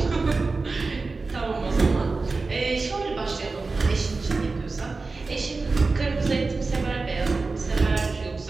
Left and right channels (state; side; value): quieter; left; 3.9 dB